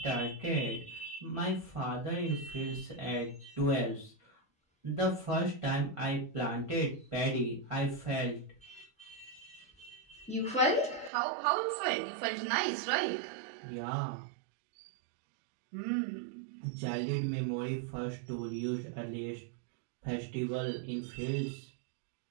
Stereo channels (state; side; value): drops out; left; at 11.1 s